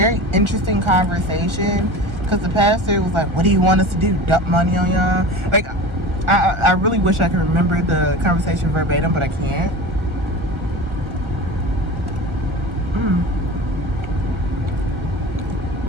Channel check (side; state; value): left; late; 1.4 ms